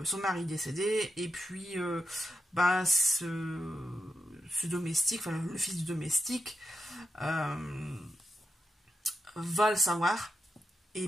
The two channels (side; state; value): both; normal; correlation 0.86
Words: son mari décédé, et puis ce domestique, enfin le fils du domestique, va le savoir.